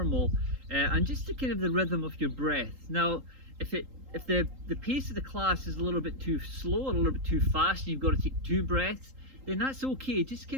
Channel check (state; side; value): late; left; 3.8 ms